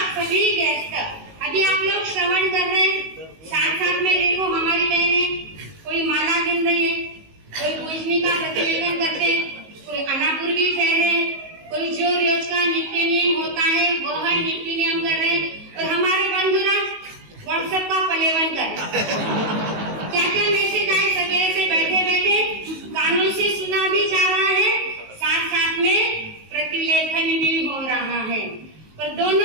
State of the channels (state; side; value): late; left; 19 ms